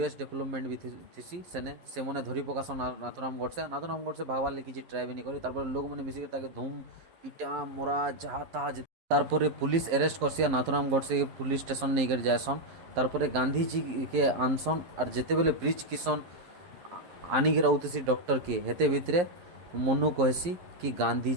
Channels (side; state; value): left; late; 11 ms